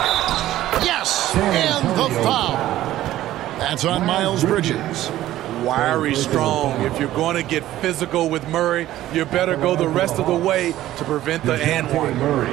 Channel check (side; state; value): left; quieter; 14.2 dB